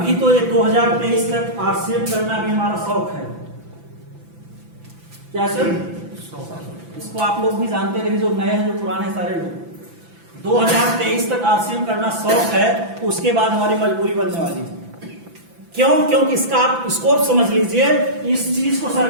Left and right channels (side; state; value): left; late; 5.9 ms